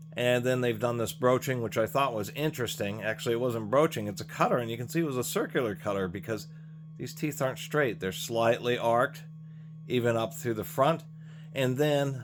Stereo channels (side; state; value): both; identical; correlation 1.00